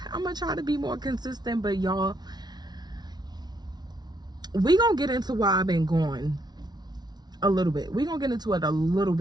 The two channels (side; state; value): left; late; 0.20 ms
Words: I'm gonna try to be more consistent, but y'all, we gonna get into why I've been gone a little bit. We gonna get into it a little